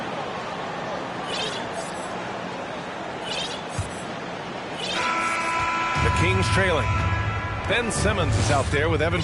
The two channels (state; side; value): identical; both; correlation 1.00